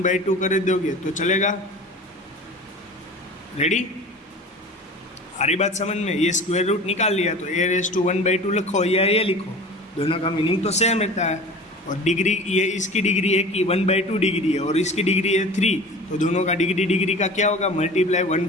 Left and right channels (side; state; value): both; normal; correlation 0.38